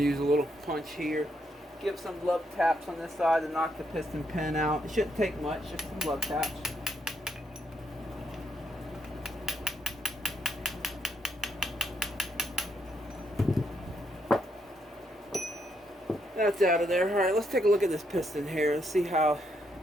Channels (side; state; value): both; normal; correlation 0.77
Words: use a little punch here. Give some love taps on this side to knock the piston pin out. It shouldn't take much, just some love taps. That's out of there. Alright, let's take a look at this piston here. Let's see how